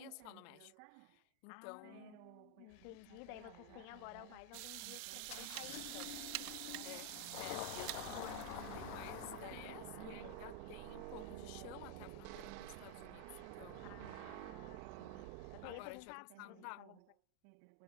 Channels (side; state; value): both; different; correlation 0.00